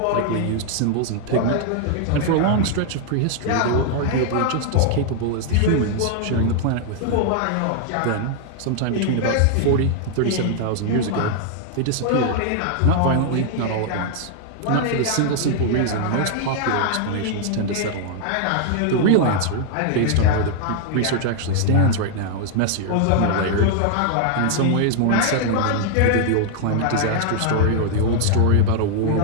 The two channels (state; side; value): different; both; correlation 0.00